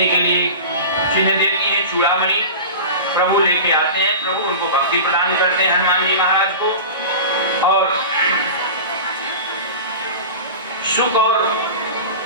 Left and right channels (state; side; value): inverted; both; correlation -0.32